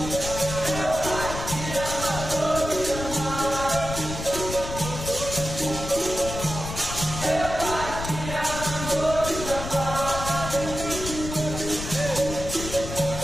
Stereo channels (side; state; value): left; noise; rumble, 7 dB below the sound